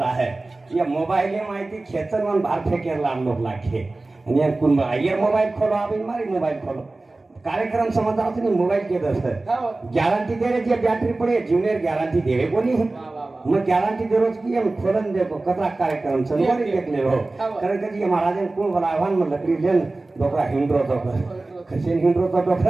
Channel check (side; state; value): left; quieter; 3.1 dB